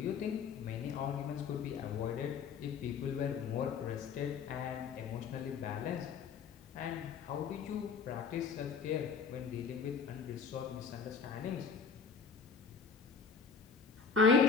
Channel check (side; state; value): right; quieter; 5.7 dB